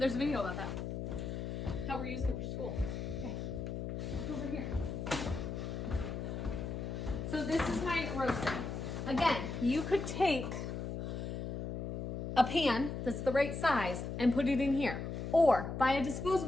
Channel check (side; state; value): left; noise; hum, 4 dB below the sound